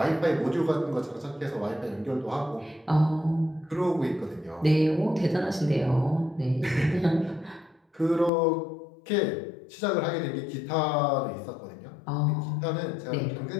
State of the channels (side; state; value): right; drops out; at 8.3 s